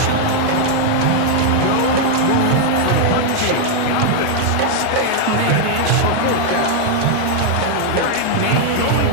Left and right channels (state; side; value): different; both; correlation 0.00